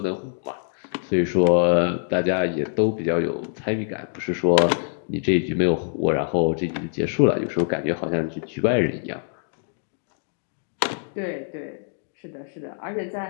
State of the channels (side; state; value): right; silent; digital silence